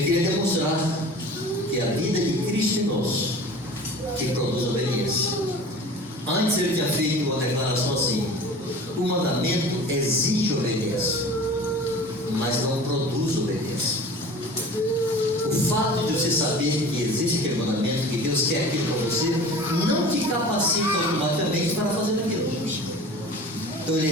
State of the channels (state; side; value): normal; both; correlation 0.40